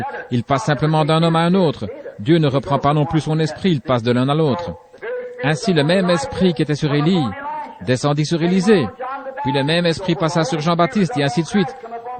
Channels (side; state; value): both; identical; correlation 1.00